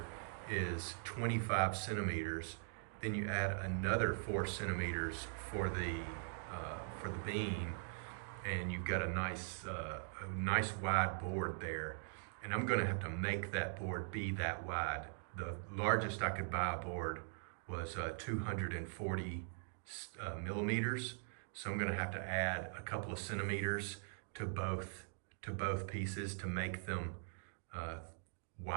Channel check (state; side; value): silent; left; digital silence